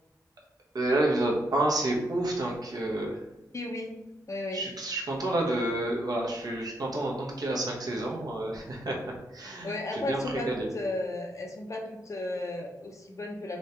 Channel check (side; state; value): both; normal; correlation 0.76